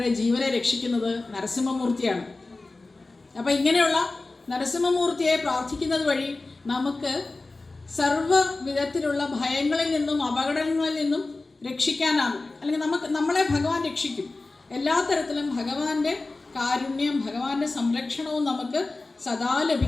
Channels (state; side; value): quieter; right; 3.3 dB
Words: ജീവനെ രക്ഷിക്കുന്നത് നരസിംഹമൂർത്തിയാണ്. അപ്പം ഇങ്ങനെയുള്ള നരസിംഹമൂർത്തിയെ പ്രാർത്ഥിക്കുന്നത് വഴി നമുക്ക് സർവ്വ വിധത്തിലുള്ള ഭയങ്ങളിൽ നിന്നും അപകടങ്ങളിൽ നിന്നും രക്ഷിക്കാനാകും. അല്ലെങ്കിൽ നമ്മളെ ഭഗവാൻ രക്ഷിക്കും. എല്ലാ തരത്തിലും ഭഗവാന്റെ കാരുണ്യം, ഭഗവാന്റെ സംരക്ഷണവും നമുക്ക് സദാ